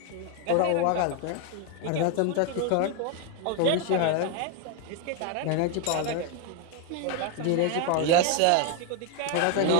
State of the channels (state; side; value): different; both; correlation 0.01